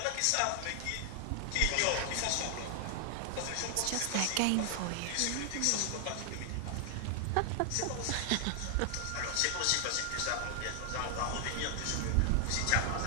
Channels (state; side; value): different; both; correlation 0.00